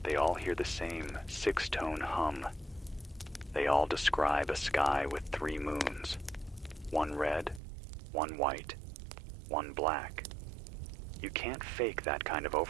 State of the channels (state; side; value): drops out; left; at 7.6 s